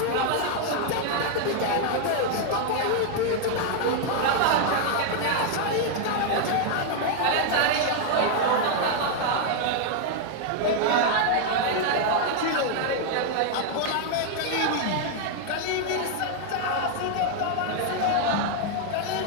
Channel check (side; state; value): both; different; correlation 0.00